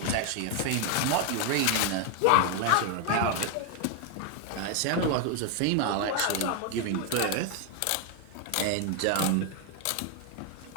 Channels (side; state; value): both; different; correlation 0.00